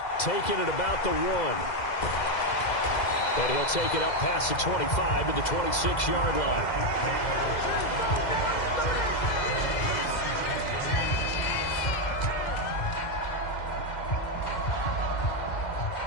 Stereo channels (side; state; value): right; late; 2.0 ms